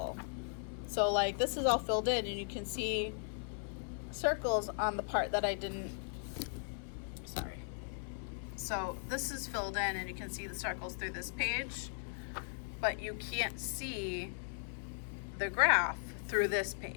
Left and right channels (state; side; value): silent; right; 53 dB below the other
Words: So this is all filled in and you can see circles on the part that I didn't, sorry. So this is filled in and you can see the circles through this page, but you can't see the graph through this